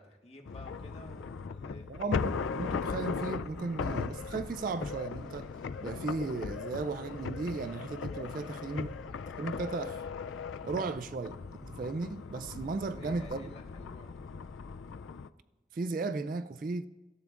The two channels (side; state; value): both; normal; correlation 0.45